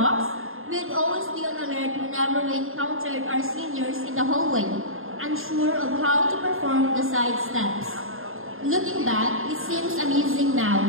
we'd always be on alert whenever we encountered our seniors in the hallway, unsure of how to perform the side steps. Looking back, it seems amusing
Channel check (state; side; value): late; left; 0.60 ms